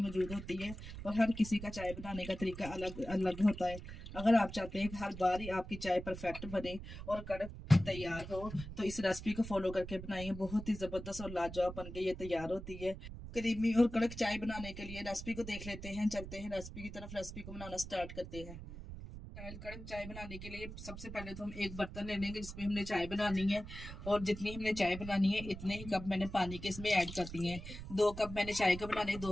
मौजूद होती है और हर किसी का चाय बनाने का तरीका अलग अलग होता है। अगर आप चाहते हैं कि हर बार ही आपकी चाय परफेक्ट बने और कड़क तैयार हो तो इस रेसिपी को फॉलो करके बनाइए। बहुत ही ज़बरदस्त और लाजवाब बन के ये तैयार होती है। क्रीमी और कड़क चाय बनाने के लिए रेसिपी को देख लेते हैं। चलते हैं रेसिपी की तरफ। रेसिपी को बनाना स्टार्ट करते हैं। कड़क चाय बनाने के लिए सबसे पहले तो हम एक बर्तन ले लेंगे जिसमें हमने चाय बनानी है और जितनी हमने चाय बनानी है इतने ही कप मैंने पानी के इसमें ऐड कर दिए हैं। 2 कप मैंने चाय का बनाने,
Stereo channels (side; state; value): right; noise; rumble, 11 dB below the sound